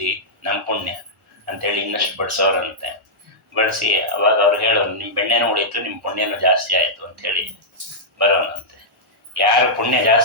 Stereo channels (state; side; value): normal; both; correlation -0.10